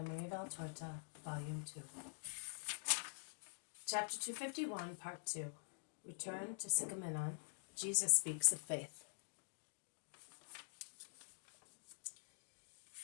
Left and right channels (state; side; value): silent; right; digital silence